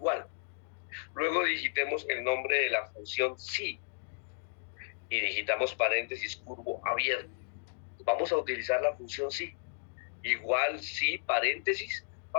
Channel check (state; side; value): silent; right; digital silence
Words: Luego digitemos el nombre de la función sí y digitamos paréntesis curvo abierto. Vamos a utilizar la función sí. Igual sí, paréntesis.